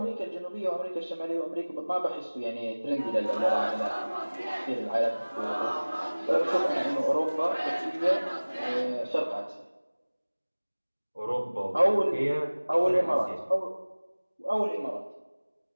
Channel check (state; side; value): inverted; both; correlation -1.00